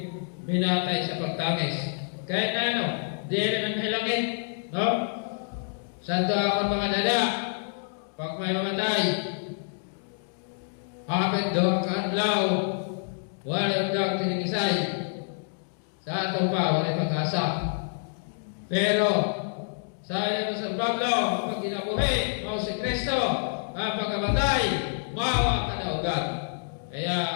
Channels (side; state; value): right; silent; digital silence